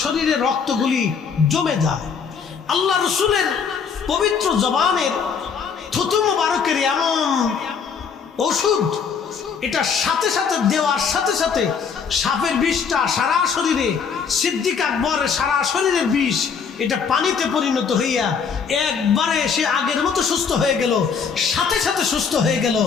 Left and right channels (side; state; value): right; quieter; 6.2 dB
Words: শরীরের রক্তগুলি জমে যায়। আল্লাহ রসুলের পবিত্র জবানের থুতু মুবারকের এমন ওষুধ, এটা সাথে সাথে দেওয়ার সাথে সাথে সাপের বিষটা সারা শরীরে, সিদ্দিক আকবরের সারা শরীরের বিষ এটা পানিতে পরিণত হইয়া একবারে সে আগের মতো সুস্থ হয়ে গেল, সাথে সাথে সুস্থ হয়ে গেল।